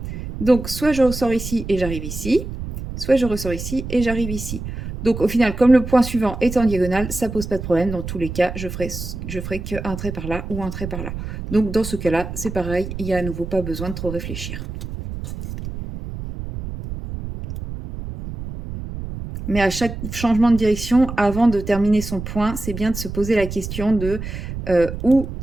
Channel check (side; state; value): right; noise; rumble, 8 dB below the sound